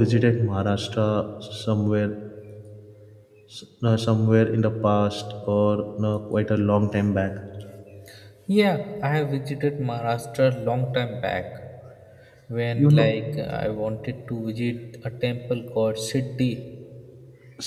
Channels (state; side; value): identical; both; correlation 1.00